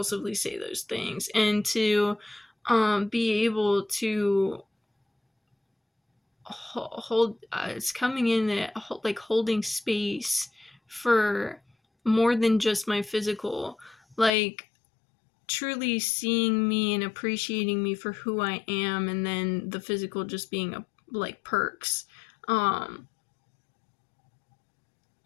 say those things and to be able to hold, it's coming in at, like, holding space for more than just my physical, like, truly seeing me and appreciating me for who I am, and then the physical just being like perks. And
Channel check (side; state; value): right; drops out; at 14.3 s